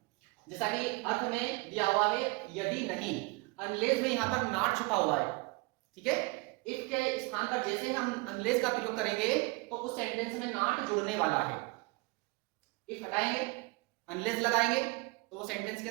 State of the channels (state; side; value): quieter; left; 26.8 dB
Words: जैसा कि अर्थ में दिया हुआ है यदि नहीं, अनलेस में यहां पर नॉट छुपा हुआ है, ठीक है। इफ के स्थान पर जैसे हम अनलेस का प्रयोग करेंगे तो उस सेंटेंस में नॉट जुड़ने वाला है। इफ हटाएंगे, अनलेस लगाएंगे तो वो सेंटेंस